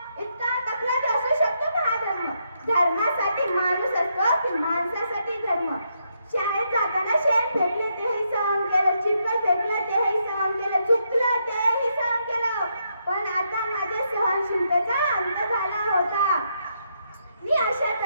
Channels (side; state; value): both; inverted; correlation -0.78